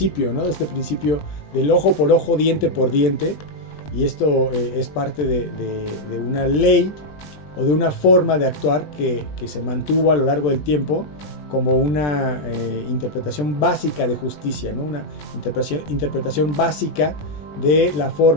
¿no? De este principio del ojo por ojo, diente por diente, y esto es parte de una ley o de una forma de actuar que se mantuvo a lo largo del tiempo como una interpretación básica de justicia, ¿no? Una interpretación básica de la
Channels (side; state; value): right; late; 20 ms